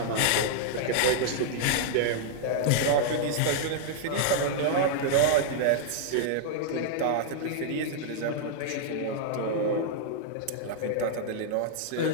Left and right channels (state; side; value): different; both; correlation -0.01